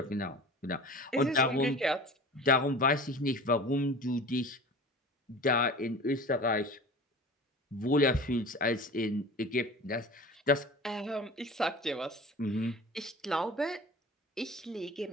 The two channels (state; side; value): normal; both; correlation 0.38